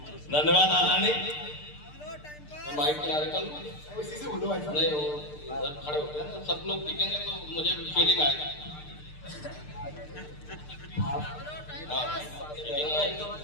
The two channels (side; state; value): right; late; 6.7 ms